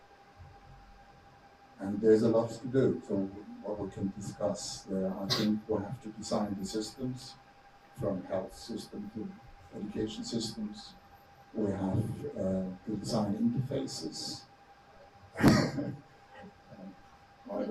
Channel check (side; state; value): both; identical; correlation 1.00